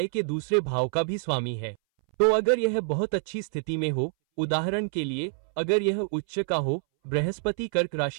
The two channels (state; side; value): silent; left; 60 dB below the other